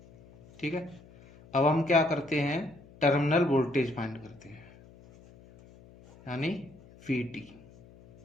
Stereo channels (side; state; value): left; noise; hum, 23 dB below the sound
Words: ठीक है, अब हम क्या करते हैं, टर्मिनल वोल्टेज फाइंड करते हैं। यानी VT।